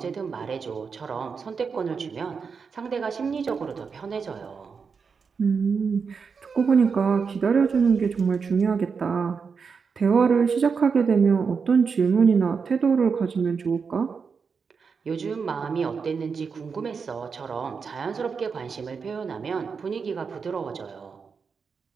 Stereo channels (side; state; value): left; quieter; 5.6 dB